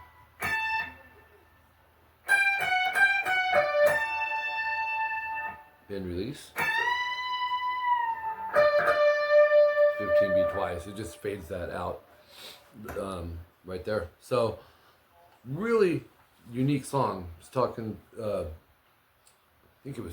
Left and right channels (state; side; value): identical; both; correlation 1.00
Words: Bend release. 15B twice. It just fades that out right there. So really unique song. I was talking, I think it